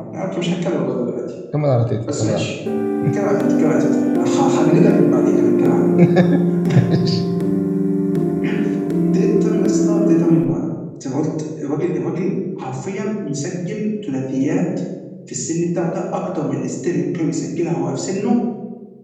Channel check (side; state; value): both; identical; correlation 1.00